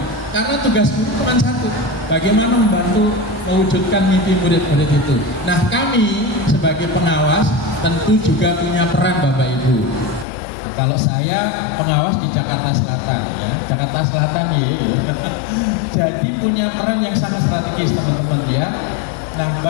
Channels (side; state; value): right; drops out; at 10.2 s